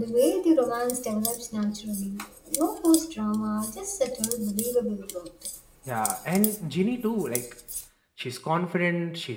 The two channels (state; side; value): identical; both; correlation 1.00